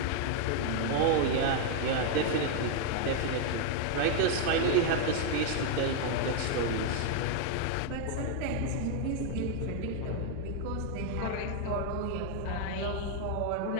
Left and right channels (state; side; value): different; both; correlation 0.00